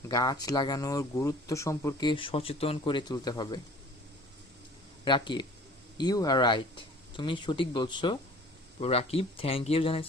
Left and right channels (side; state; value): both; normal; correlation 0.48